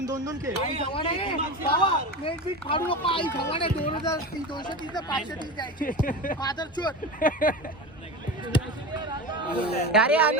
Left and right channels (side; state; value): both; normal; correlation 0.26